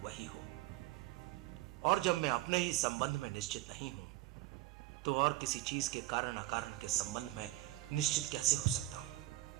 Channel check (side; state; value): left; quieter; 16.7 dB